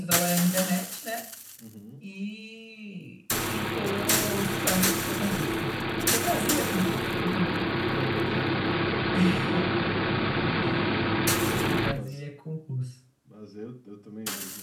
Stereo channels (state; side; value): identical; both; correlation 1.00